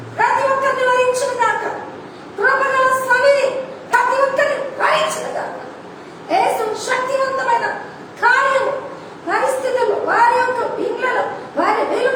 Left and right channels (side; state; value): both; identical; correlation 1.00